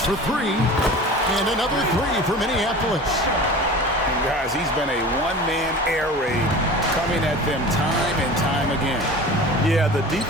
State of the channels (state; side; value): normal; both; correlation 0.37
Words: for three. And another three for Minneapolis. And guys, he's been a one-man air raid coming at them time and time again. Yeah, the